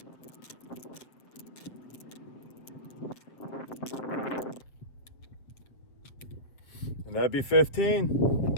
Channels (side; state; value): right; late; 7.7 ms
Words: And that'd be 15.